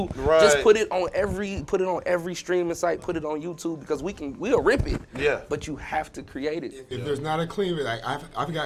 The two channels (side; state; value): both; identical; correlation 1.00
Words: Just put it on every streaming site. Put it on YouTube because we'll rip it. Yeah. But you have to create it. If there's not a clean, like I've